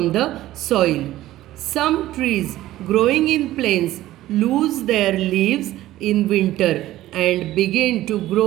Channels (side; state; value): left; quieter; 15.1 dB